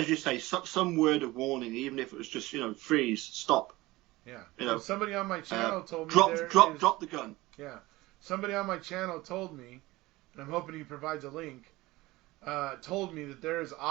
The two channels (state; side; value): quieter; left; 19.7 dB